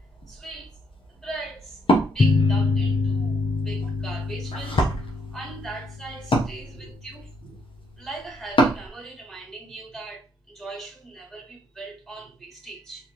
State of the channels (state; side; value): normal; both; correlation 0.73